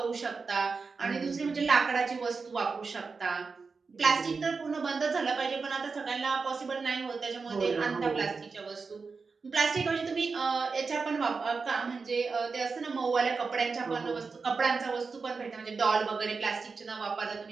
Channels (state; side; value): quieter; left; 4.7 dB